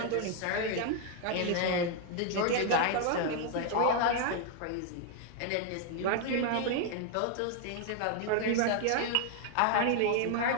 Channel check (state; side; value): different; both; correlation 0.00